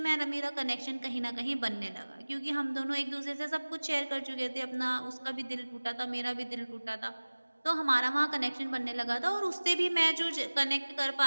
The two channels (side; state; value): both; inverted; correlation -1.00